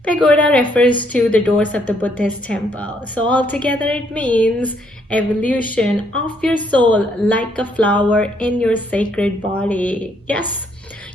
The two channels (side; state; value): both; normal; correlation 0.70